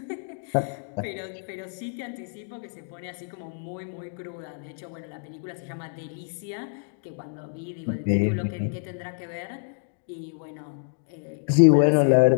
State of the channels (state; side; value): silent; right; digital silence